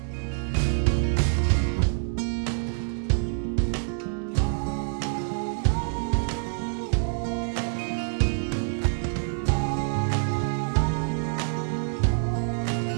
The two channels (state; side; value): silent; left; digital silence